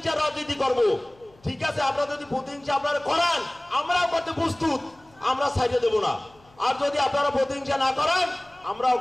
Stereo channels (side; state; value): left; noise; hum, 29 dB below the sound